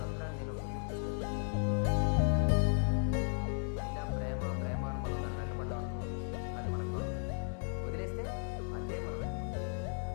నేను ఒక సొల్యూషన్ ఇస్తే? అయినా ప్రేమ ప్రేమ అని మనం దాన్ని వెంటపడ్డాం అనుకో, అది మనకు దొరకదు. వదిలేస్తే అదే మనం వెంటపడి.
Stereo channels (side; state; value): right; silent; 54 dB below the other